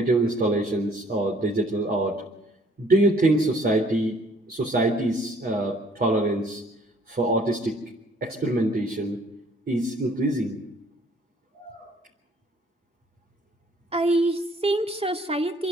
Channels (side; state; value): both; normal; correlation 0.59